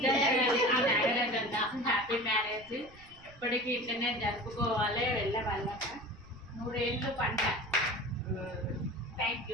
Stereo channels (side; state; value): right; noise; rumble, 23 dB below the sound